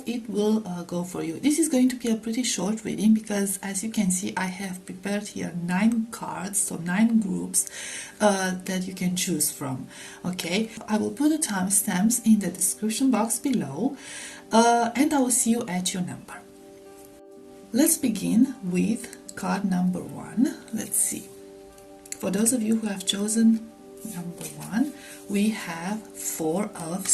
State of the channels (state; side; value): identical; both; correlation 1.00